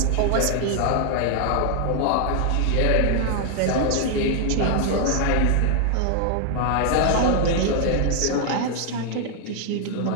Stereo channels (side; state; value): both; different; correlation 0.00